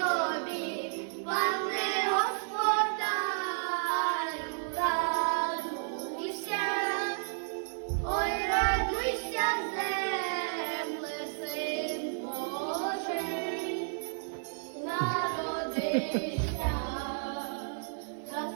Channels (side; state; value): left; silent; 56 dB below the other